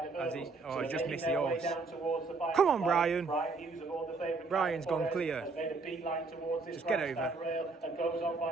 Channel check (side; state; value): left; quieter; 4.0 dB